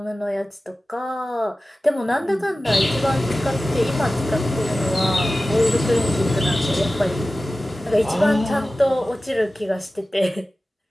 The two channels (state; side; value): normal; both; correlation 0.95